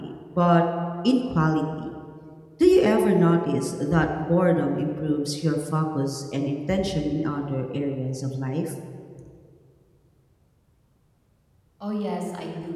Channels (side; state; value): both; identical; correlation 1.00